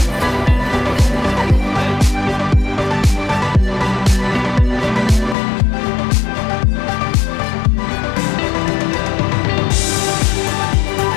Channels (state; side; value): drops out; right; at 5.4 s